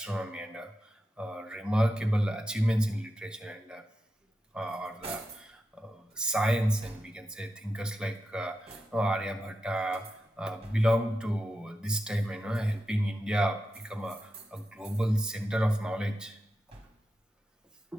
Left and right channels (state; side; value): normal; both; correlation 0.89